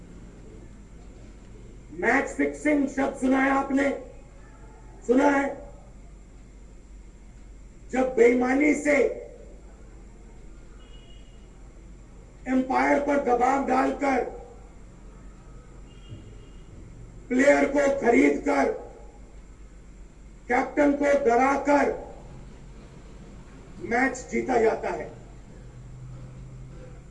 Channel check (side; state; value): both; identical; correlation 1.00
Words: मैच फिक्सिंग शब्द सुना है आपने? सुना है? जब बेईमानी से एम्पायर पर दबाव डालकर प्लेयर को खरीदकर कैप्टन को डराकर मैच जीता जाता है।